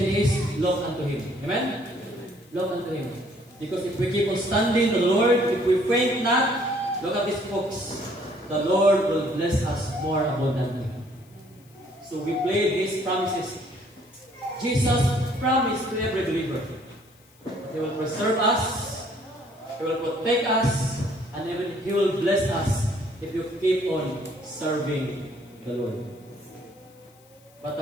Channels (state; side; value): noise; left; hiss, 29 dB below the sound